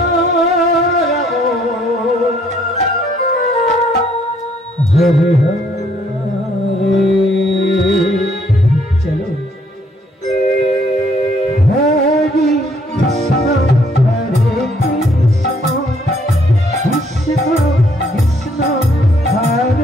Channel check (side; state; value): both; normal; correlation 0.66